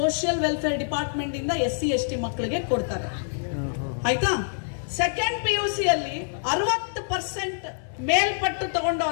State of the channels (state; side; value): silent; right; digital silence